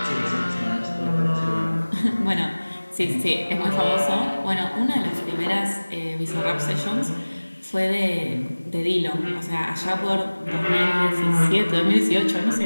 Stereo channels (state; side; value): inverted; both; correlation -1.00